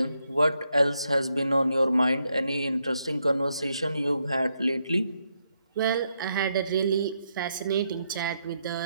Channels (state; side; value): inverted; both; correlation -0.79